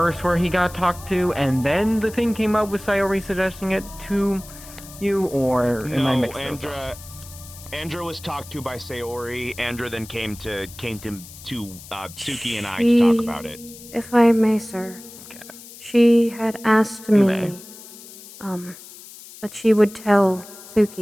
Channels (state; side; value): noise; left; hiss, 17 dB below the sound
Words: where he got talked to, and then the thing came up with Sayori suggesting it to you, or am I mixing those up? Andra was talked to by Sayori. Andra then came to Suki and I to talk about it. If I may, sir. Okay. She had asked me, that she would tell